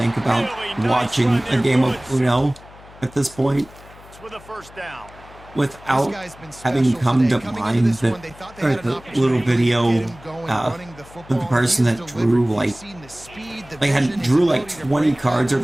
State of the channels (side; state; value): left; noise; hum, 21 dB below the sound